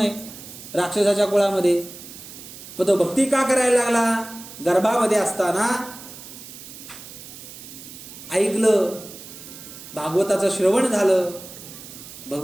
राक्षसाच्या कुळामध्ये. पण तो भक्ती का करायला लागला? गर्भामध्ये असताना ऐकलं, भागवताचं श्रवण झालं,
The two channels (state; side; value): noise; right; hiss, 15 dB below the sound